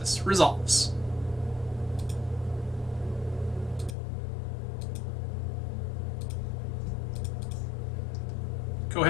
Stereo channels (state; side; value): drops out; right; at 4.0 s